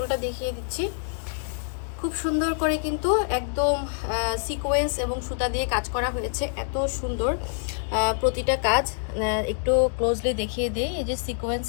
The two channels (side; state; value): right; silent; digital silence